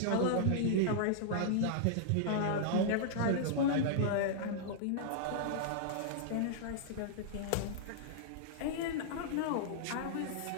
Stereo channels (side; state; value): both; different; correlation -0.02